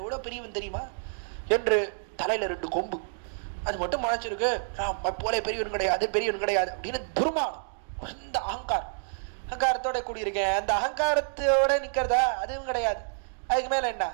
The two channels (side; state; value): left; silent; digital silence